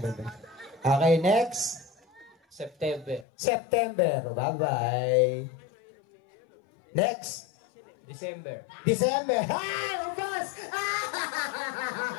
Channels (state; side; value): drops out; right; at 3.2 s